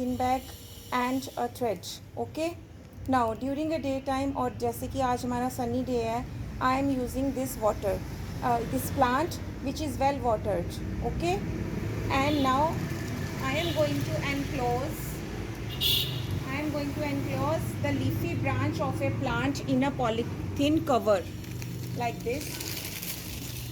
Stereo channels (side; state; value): both; identical; correlation 1.00